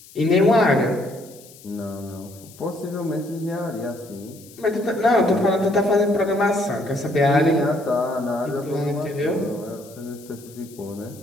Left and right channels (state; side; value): noise; left; hiss, 22 dB below the sound